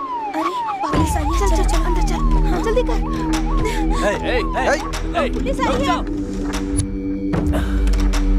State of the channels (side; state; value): both; identical; correlation 1.00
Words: अरे पुलिस आई है, चल चल चल अंदर चल, हाँ, जल्दी कर। पुलिस आई है।